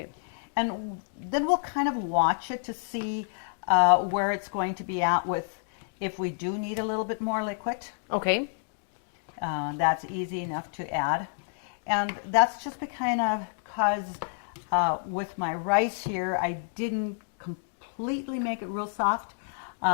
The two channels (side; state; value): right; silent; digital silence